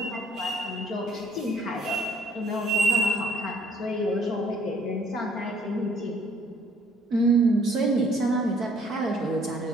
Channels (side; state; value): both; normal; correlation 0.61